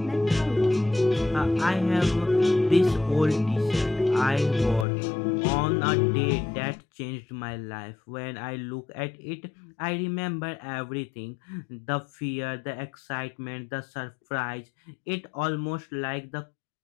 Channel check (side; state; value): right; drops out; at 4.9 s